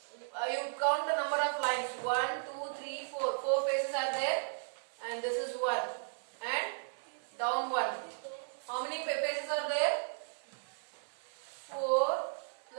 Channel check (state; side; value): silent; left; 54 dB below the other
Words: You count the number of lines. 1, 2, 3, 4. 4 faces are there. And this is 1. And down 1. How many faces are there? 4